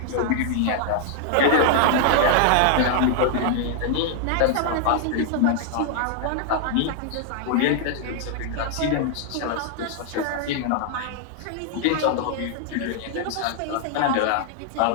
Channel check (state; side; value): different; both; correlation 0.00